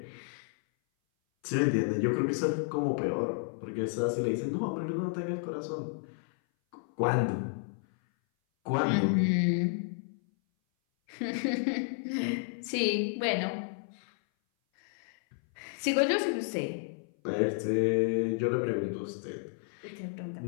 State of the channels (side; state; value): right; silent; 57 dB below the other